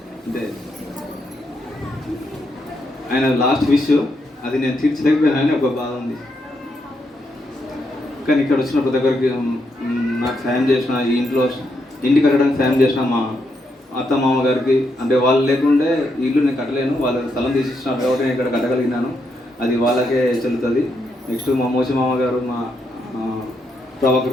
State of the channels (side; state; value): both; normal; correlation 0.80